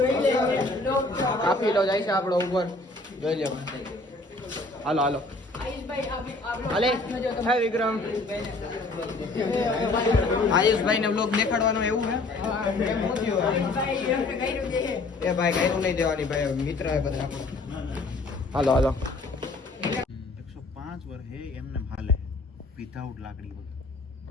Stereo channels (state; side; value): quieter; right; 3.2 dB